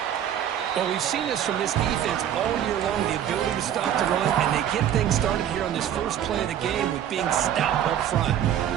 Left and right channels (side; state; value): left; quieter; 10.2 dB